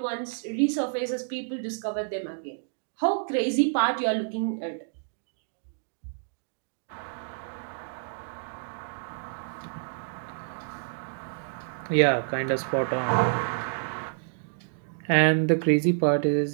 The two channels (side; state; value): left; silent; digital silence